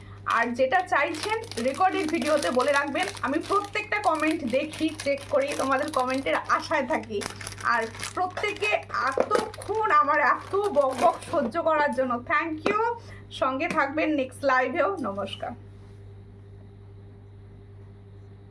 আর যেটা চাইছেন রেকর্ডেড ভিডিওতে বলে রাখবেন, আমি প্রত্যেকটা কমেন্ট দেখি, চেক করি, তোমাদের কমেন্টের আশায় থাকি। আর প্রত্যেকে এতক্ষণ আমার এত বক বক সহ্য করার জন্য থ্যাংক ইউ। সঙ্গে থাকবেন নেক্সট লাইভেও। নমস্কার।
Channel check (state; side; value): identical; both; correlation 1.00